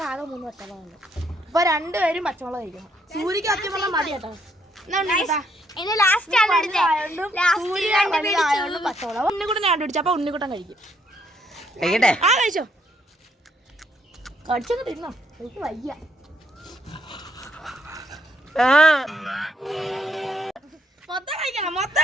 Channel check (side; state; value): both; normal; correlation 0.71